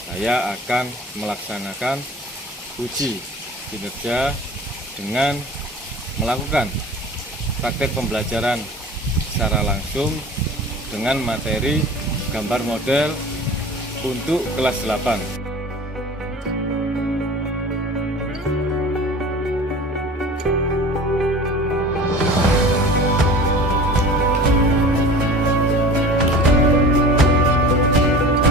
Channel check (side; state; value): both; normal; correlation 0.40